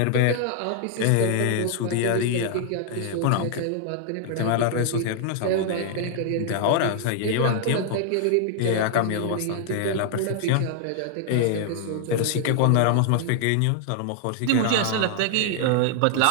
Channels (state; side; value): different; both; correlation 0.00